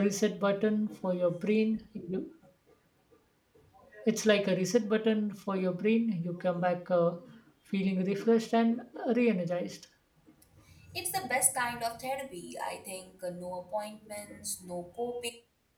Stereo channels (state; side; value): identical; both; correlation 1.00